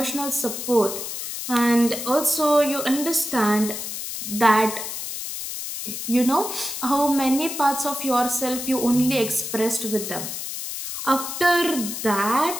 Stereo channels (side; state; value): left; noise; hiss, 6 dB below the sound